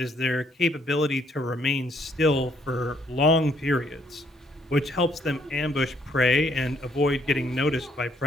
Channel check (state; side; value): normal; both; correlation 0.68